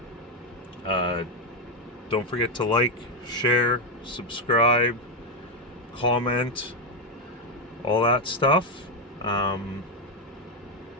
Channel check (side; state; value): both; normal; correlation 0.06